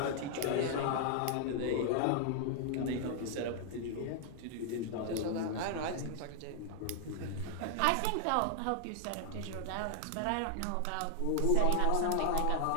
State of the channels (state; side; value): different; both; correlation 0.00